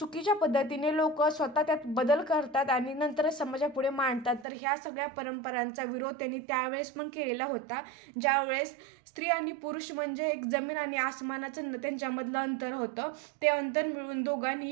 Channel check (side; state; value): left; drops out; at 4.5 s